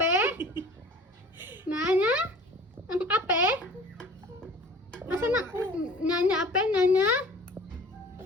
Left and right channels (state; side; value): normal; both; correlation 0.45